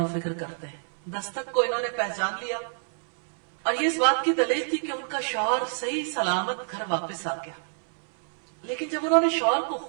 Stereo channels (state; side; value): silent; left; 60 dB below the other